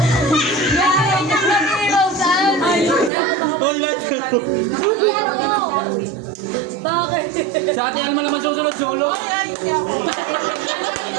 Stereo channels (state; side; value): drops out; left; at 3.1 s